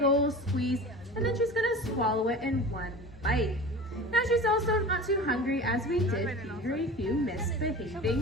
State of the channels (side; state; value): both; normal; correlation 0.35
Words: old squeeze, and then she's gonna swallow it in one bite. Now she's also not too hungry, as we did feed her a few